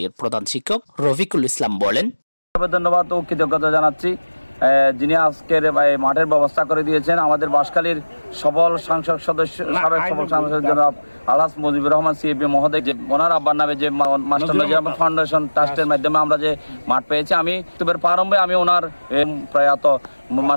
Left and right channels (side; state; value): both; inverted; correlation -1.00